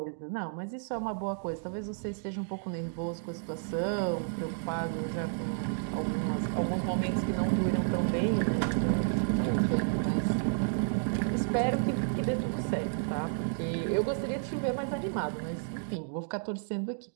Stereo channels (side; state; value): left; silent; digital silence